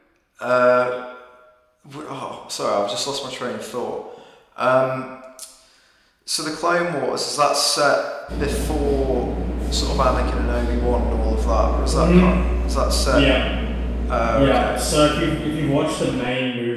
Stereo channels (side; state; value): both; identical; correlation 1.00